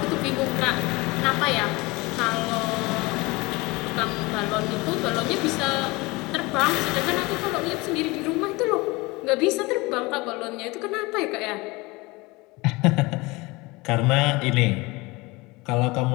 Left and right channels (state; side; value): quieter; right; 23.5 dB